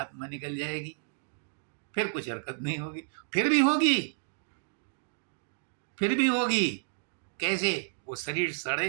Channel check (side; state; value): left; silent; digital silence